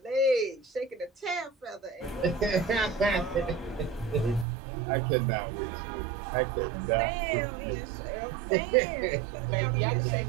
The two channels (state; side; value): drops out; left; at 4.5 s